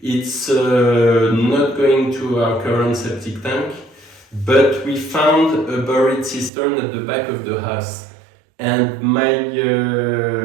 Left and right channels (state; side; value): drops out; left; at 6.5 s